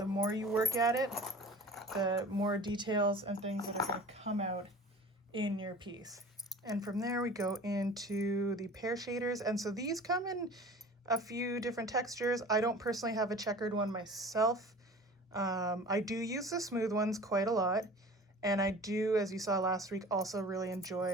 more you work at it, the more details and things that are going to come out in your piece. And from there we go into the Pear Shaders. And so these come in a few different textures. I don't personally have a checkered one myself. I do use the smooth ones quite a lot. And I do, as you saw last week, also really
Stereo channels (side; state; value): both; normal; correlation 0.42